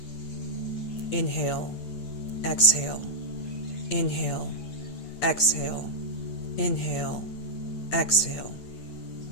Inhale, exhale, inhale, exhale, inhale, exhale.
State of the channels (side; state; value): right; late; 8.7 ms